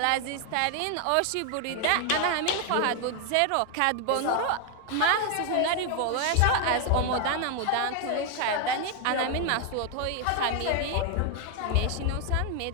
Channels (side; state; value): both; different; correlation 0.00